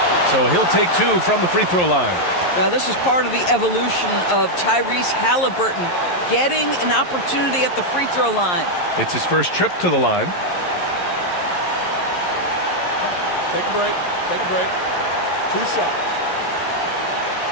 So he'll take 2 from the free throw line. Now, this is part of the evolution of Tyrese Halliburton getting an opportunity at the free throw line. It's his first trip to the line. Take a break. Take a break. 2 shots.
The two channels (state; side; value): late; right; 11 ms